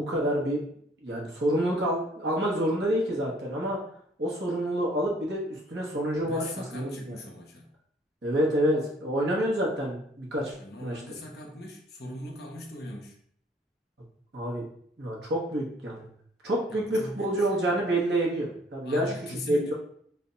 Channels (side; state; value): both; normal; correlation 0.59